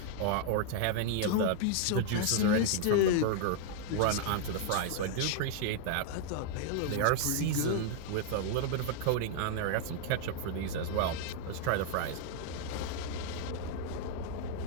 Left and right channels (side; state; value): both; different; correlation 0.00